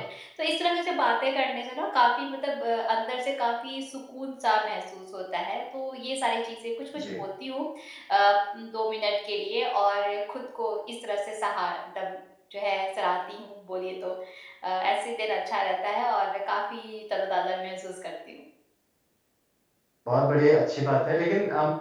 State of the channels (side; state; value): both; identical; correlation 1.00